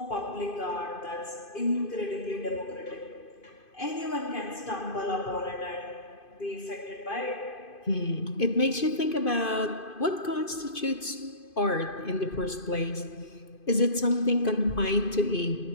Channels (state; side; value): late; right; 2.5 ms